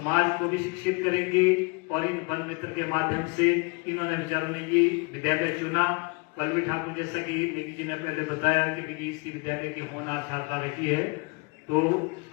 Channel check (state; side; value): quieter; right; 29.3 dB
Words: को भी शिक्षित करेंगे और इन वन मित्र के माध्यम से इन्होंने बेचारों ने ये विद्यालय चुना। पल्लवी ठाकुर जैसा कि नेगी जी ने पहले बताया कि इसी विद्यालय की होनहार छात्रा रही है, तो